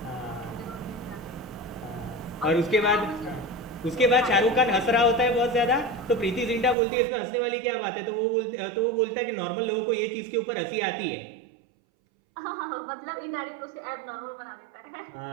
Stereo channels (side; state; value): left; drops out; at 6.8 s